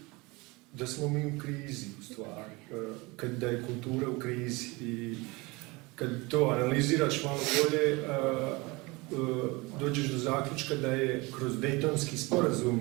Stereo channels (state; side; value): quieter; left; 24.6 dB